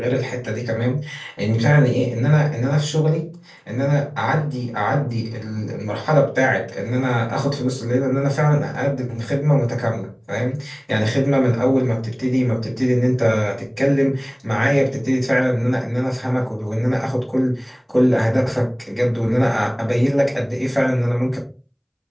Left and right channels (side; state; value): both; identical; correlation 1.00